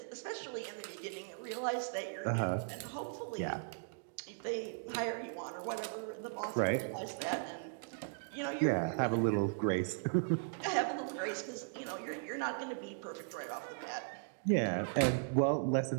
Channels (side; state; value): left; silent; digital silence